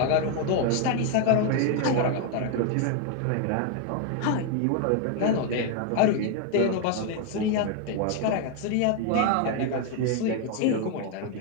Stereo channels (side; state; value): both; different; correlation 0.01